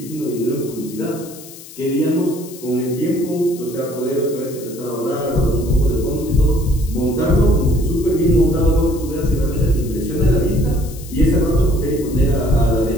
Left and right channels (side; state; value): left; noise; hiss, 17 dB below the sound